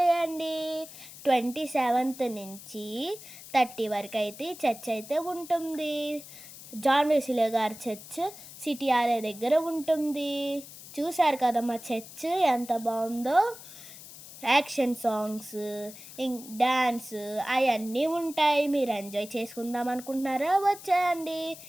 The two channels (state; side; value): noise; left; hiss, 16 dB below the sound